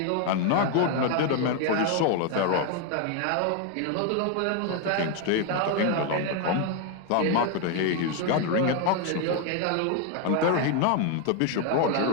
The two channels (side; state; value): both; different; correlation 0.01